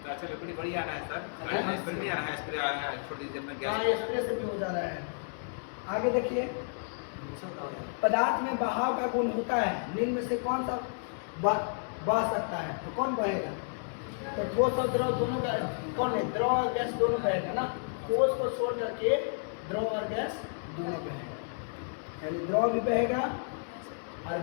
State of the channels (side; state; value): right; silent; digital silence